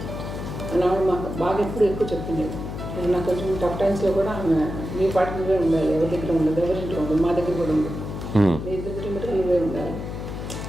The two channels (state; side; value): noise; left; hum, 7 dB below the sound